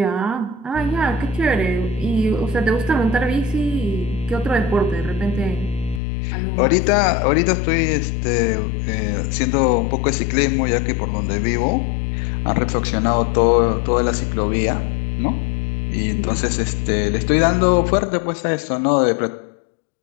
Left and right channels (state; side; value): drops out; right; at 6.0 s